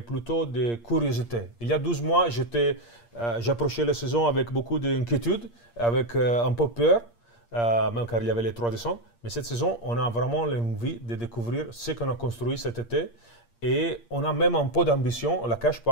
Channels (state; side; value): late; right; 8.6 ms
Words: plutôt de curiosité. Il y a 12 mois, j'approchais la saison avec beaucoup d'inquiétude, avec un peu peur, même car il y avait les 3 décembre. Mais cette saison, on a vraiment l'envie de découvrir ce qu'on a construit cet été. Et on a même un peu d'ambition, on ne la cache